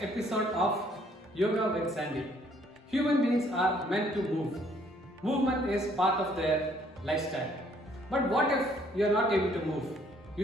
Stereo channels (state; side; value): normal; both; correlation 0.63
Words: episode of Yoga with Sandy. Human beings are meant to move. Movement is part of their lifestyle. But what if you are not able to move?